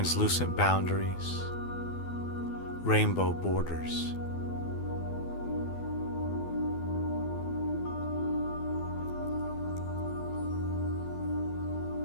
boundaries, rainbow borders.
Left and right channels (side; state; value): right; late; 12 ms